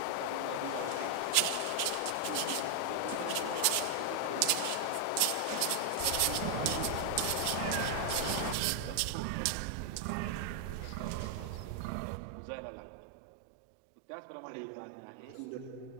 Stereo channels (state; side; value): different; both; correlation 0.00